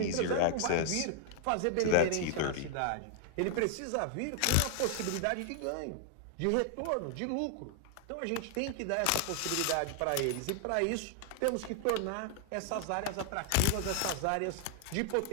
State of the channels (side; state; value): both; different; correlation 0.00